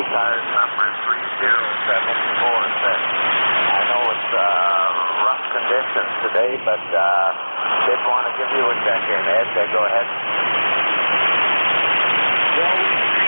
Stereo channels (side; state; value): both; inverted; correlation -1.00